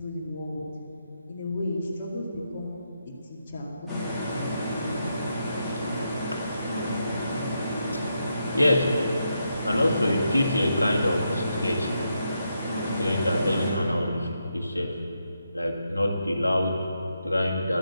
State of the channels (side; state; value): both; inverted; correlation -0.82